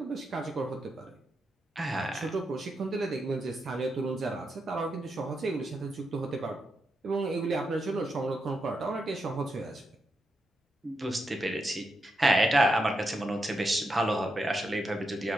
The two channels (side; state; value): both; normal; correlation 0.85